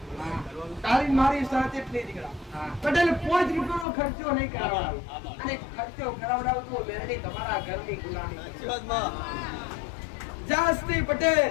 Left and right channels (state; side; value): drops out; right; at 3.9 s